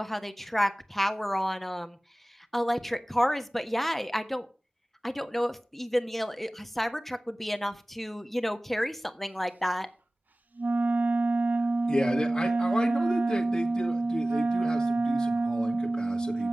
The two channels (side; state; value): both; normal; correlation 0.98